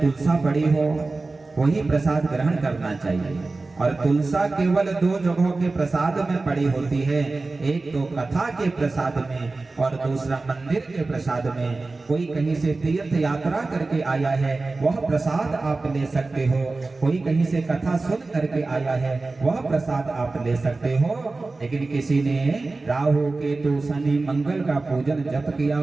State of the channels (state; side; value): quieter; left; 3.5 dB